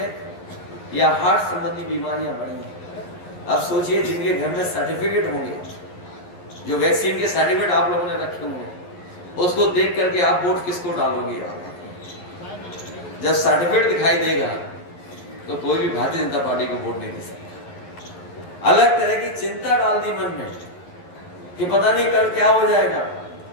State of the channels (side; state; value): right; late; 11 ms